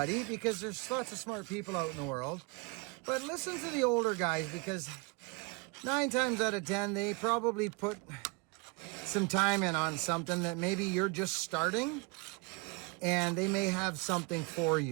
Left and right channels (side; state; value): left; quieter; 30.2 dB